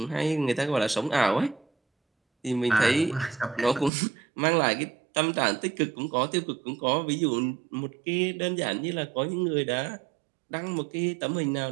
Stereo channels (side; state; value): left; drops out; at 3.9 s